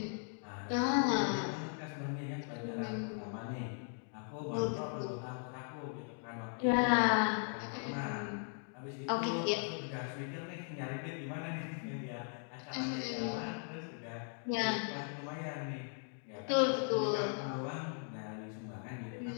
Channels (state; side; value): silent; right; 52 dB below the other